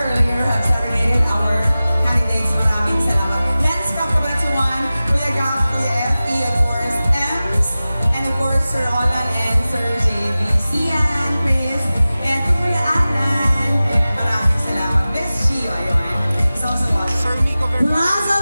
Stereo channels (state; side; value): inverted; both; correlation -0.96